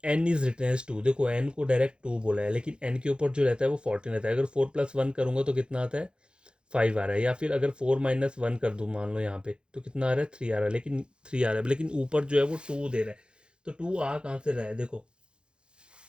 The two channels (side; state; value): left; late; 0.052 ms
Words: N is written as 2, देखो एन को डायरेक्ट 2 बोला है, लेकिन एन के ऊपर जो रहता है वो 14 रहता है। अगर 4+1 करूंगा तो कितना आता है, 5 आ रहा है, या फिर अगर 4-1 कर दूँ मान लो यहाँ पे, तो कितना आ रहा है, 3 आ रहा है, लेकिन 3 आ रहा है, लेकिन ऊपर जो है वो 2 दे रहा है, तो 2 आ कहाँ से रहा है, देखो